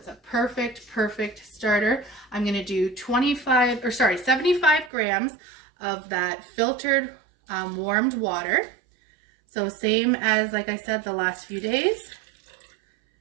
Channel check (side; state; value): left; drops out; at 4.9 s